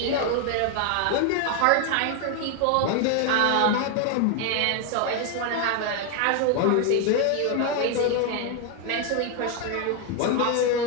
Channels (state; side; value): different; both; correlation 0.01